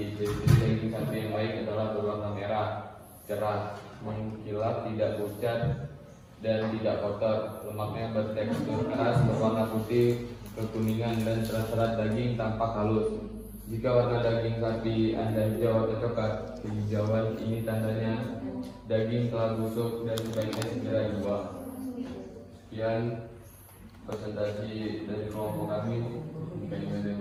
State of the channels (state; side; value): identical; both; correlation 1.00